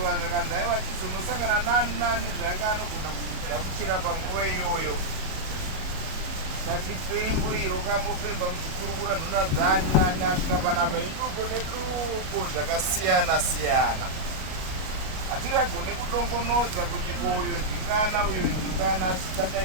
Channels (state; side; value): late; left; 37 ms